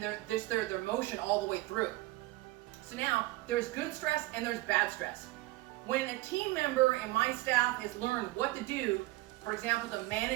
their motion all the way through. So now, there's good stress and there's bad stress. When a team member and my staff has learned what to do, for example, to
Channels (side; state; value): left; quieter; 19.1 dB